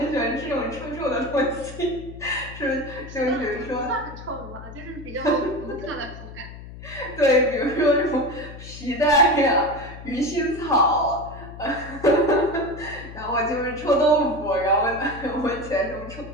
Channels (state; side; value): noise; left; hum, 14 dB below the sound